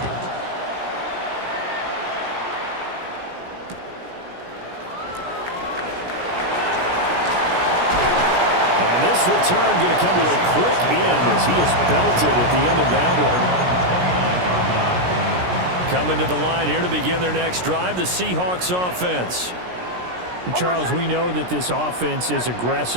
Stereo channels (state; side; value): late; left; 17 ms